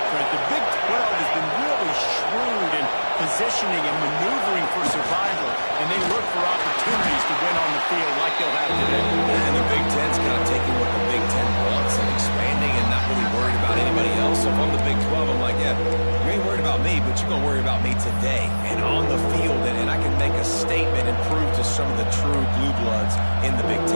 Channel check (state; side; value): inverted; both; correlation -1.00